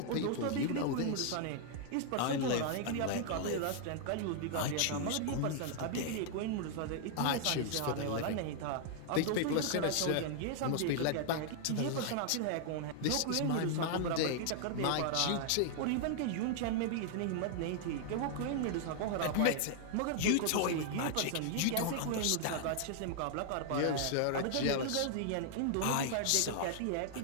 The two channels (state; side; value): different; both; correlation 0.00